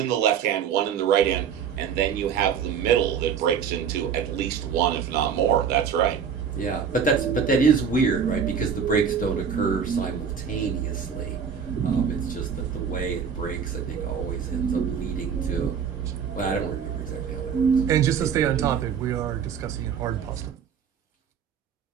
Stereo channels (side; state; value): left; quieter; 7.3 dB